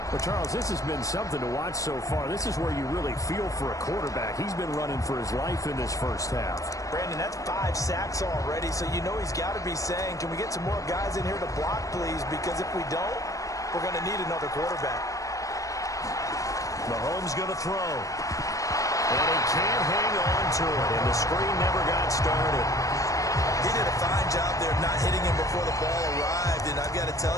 Well, Charles, this has been something to watch so far. This is where you really feel for a quarterback. He's been running for his life in this first half. Brandon, that's 5 sacks already, so you know he's got to be saying, can we get some more guys in here to block, please? Because if we don't, we're going to need another quarterback. Mahomes going to throw. And he can't hang on to it, and the screen never got started. He did a fine job there not hitting him before the ball arrived, and I've got to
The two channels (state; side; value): late; right; 0.16 ms